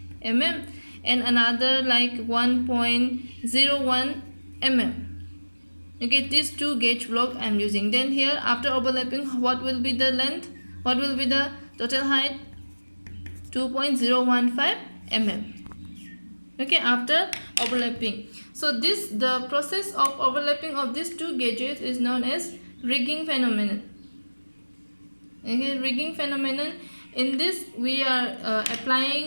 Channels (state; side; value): inverted; both; correlation -1.00